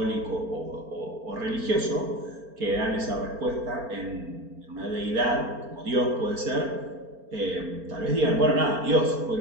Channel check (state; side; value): late; left; 4.4 ms